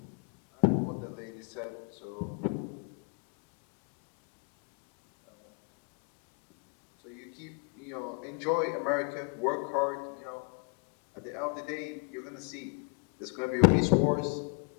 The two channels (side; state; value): right; quieter; 35.7 dB